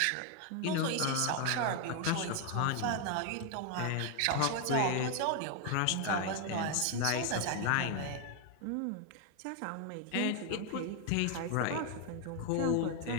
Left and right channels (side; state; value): both; different; correlation 0.01